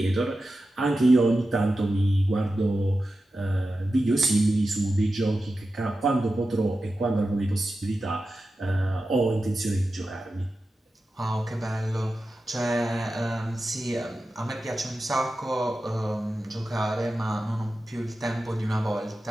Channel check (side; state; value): both; normal; correlation 0.92